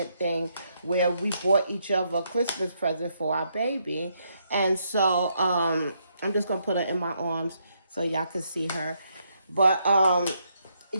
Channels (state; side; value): inverted; both; correlation -0.76